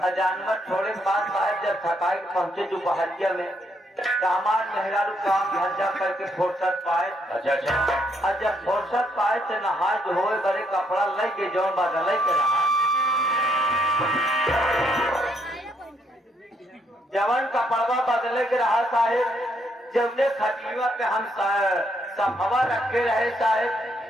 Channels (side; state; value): both; normal; correlation 0.73